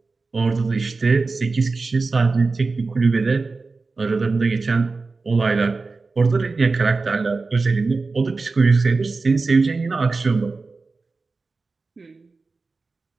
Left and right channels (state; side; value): quieter; left; 3.9 dB